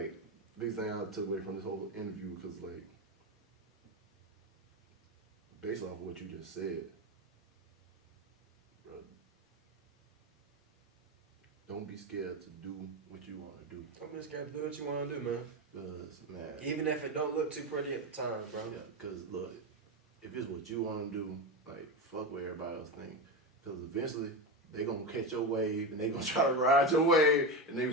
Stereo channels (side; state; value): both; normal; correlation 0.16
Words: biggest thing I took away from this whole interview, because like, based off of what you just said, bro, don't be scared to do what you want to do. I'm just gonna do what you want to do, man. Cause man, Even if it don't look too pretty at the time, bro. yeah. Cause look, if it's what you want to do, like fuck what everybody else think. Cause eventually they gonna catch your wave and they gonna try to ride your wave, and they be